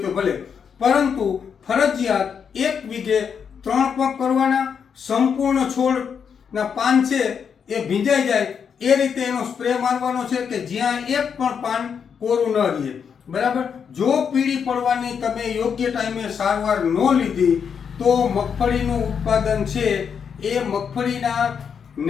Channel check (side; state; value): right; quieter; 7.0 dB